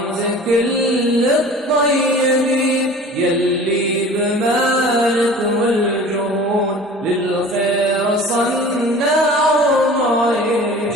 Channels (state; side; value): normal; both; correlation 0.42